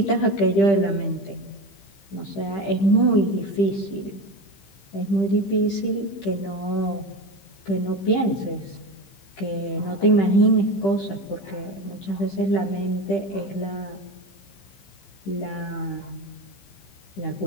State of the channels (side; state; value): right; late; 15 ms